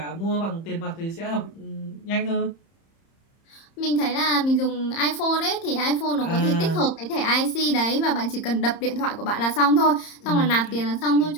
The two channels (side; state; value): right; late; 30 ms